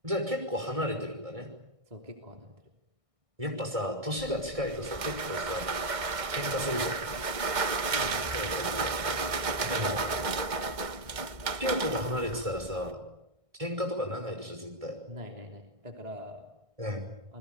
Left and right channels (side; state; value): left; late; 1.6 ms